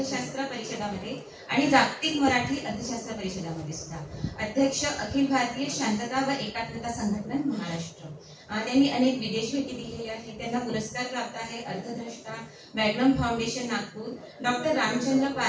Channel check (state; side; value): identical; both; correlation 1.00